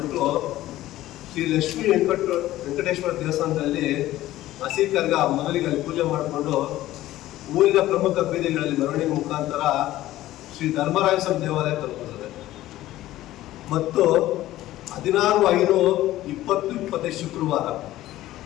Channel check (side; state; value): right; quieter; 15.2 dB